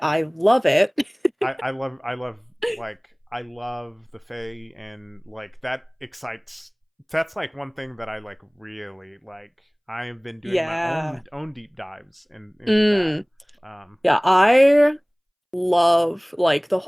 I love it. I love the Fae, and like that excites. That's like one thing that I like really like. I have been doing my Yeah. own deep dives into that. Mm. Um, Yeah, I love like the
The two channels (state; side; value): identical; both; correlation 1.00